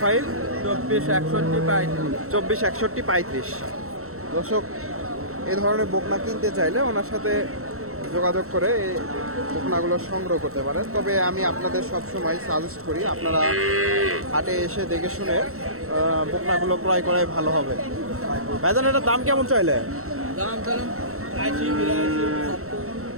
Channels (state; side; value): late; left; 0.63 ms